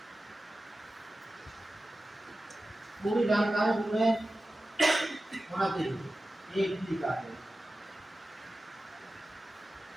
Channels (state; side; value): normal; both; correlation 0.94